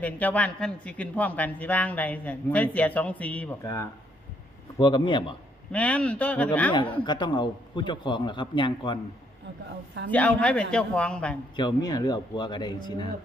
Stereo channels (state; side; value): normal; both; correlation 0.71